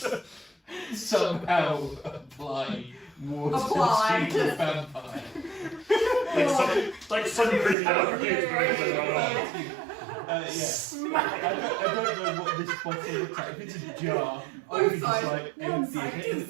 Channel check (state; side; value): drops out; left; at 7.8 s